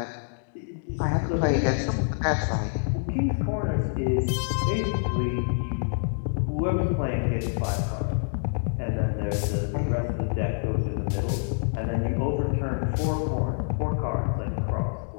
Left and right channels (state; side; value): silent; right; digital silence